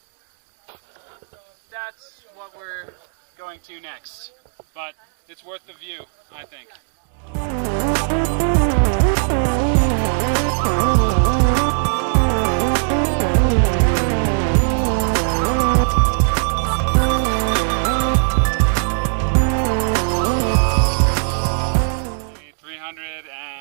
that's what we're going to next. But it's worth the view, I think. Maybe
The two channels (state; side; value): silent; left; digital silence